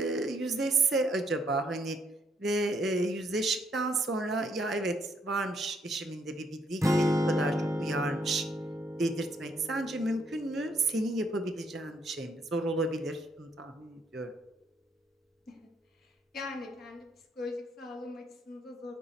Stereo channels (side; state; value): both; normal; correlation 0.72